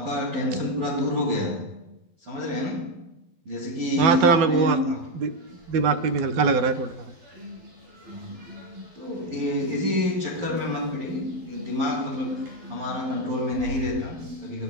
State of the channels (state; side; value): late; left; 12 ms